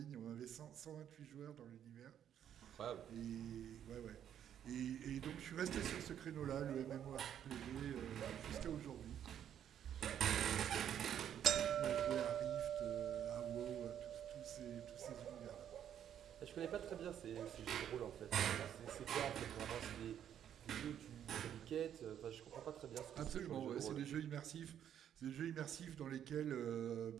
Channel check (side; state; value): left; quieter; 9.8 dB